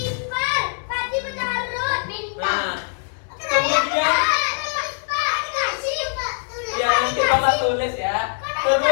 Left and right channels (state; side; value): silent; right; digital silence